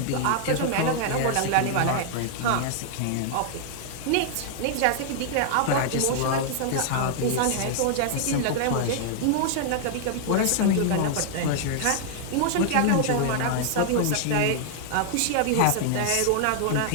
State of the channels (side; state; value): both; different; correlation 0.00